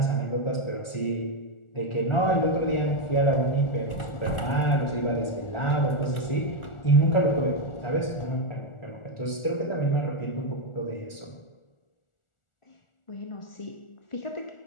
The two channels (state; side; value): late; right; 1.4 ms